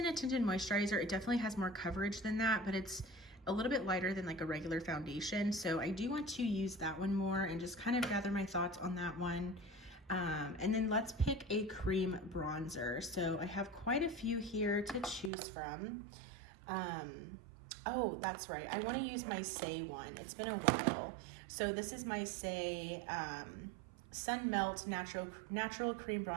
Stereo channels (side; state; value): left; drops out; at 15.3 s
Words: a tinted moisturizer. It definitely has more coverage than that, but it's a little bit lighter than like a regular foundation. So I do want to use that one more and just kind of gather my thoughts on that one. And then let's pick a cream bronzer. So I have quite a few here to choose from. Oh, that's right. I want to use my Say one. It's been a while. So this is my Say Sun Melt Natural Cream